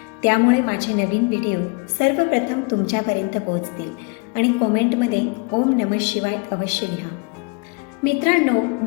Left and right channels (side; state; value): right; quieter; 31.6 dB